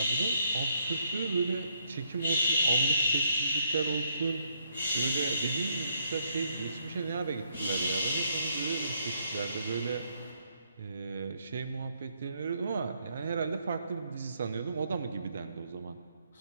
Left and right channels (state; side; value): inverted; both; correlation -0.72